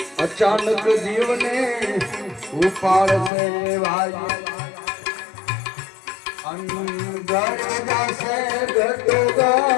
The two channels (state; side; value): drops out; right; at 3.3 s